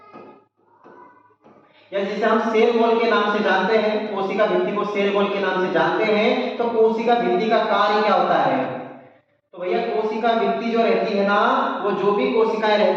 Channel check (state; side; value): identical; both; correlation 1.00